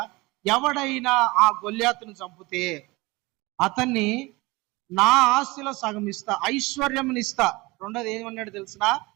ఎవడైనా ఆ గొల్యాతును చంపితే అతన్ని నా ఆస్తిలో సగం ఇస్తా, ఐశ్వర్యంని ఇస్తా. రెండోది ఏమన్నాడు తెలిసిన?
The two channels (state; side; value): quieter; left; 23.0 dB